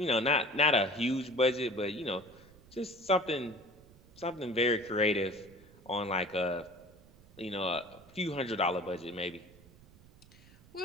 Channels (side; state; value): right; noise; rumble, 24 dB below the sound